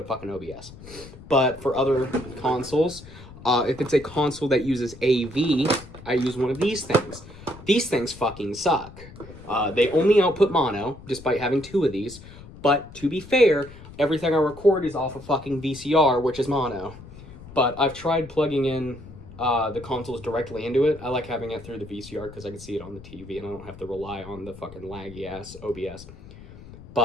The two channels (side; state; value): left; noise; rumble, 17 dB below the sound